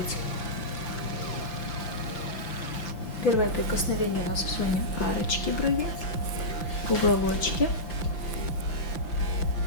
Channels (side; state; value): right; late; 5.8 ms